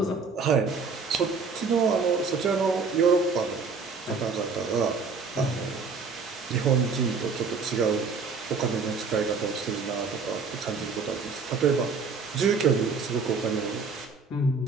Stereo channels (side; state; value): left; quieter; 4.7 dB